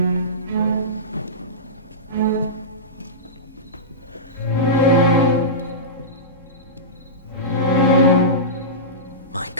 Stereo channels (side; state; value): both; normal; correlation -0.19